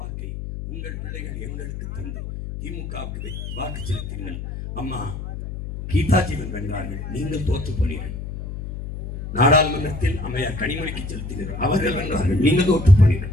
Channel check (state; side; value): noise; left; hum, 7 dB below the sound